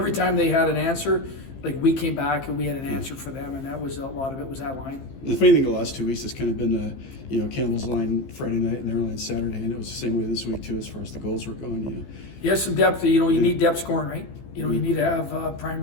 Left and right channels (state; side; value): late; right; 15 ms